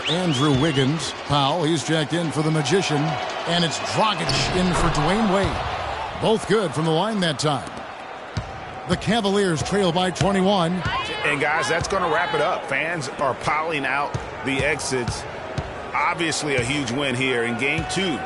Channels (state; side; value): identical; both; correlation 1.00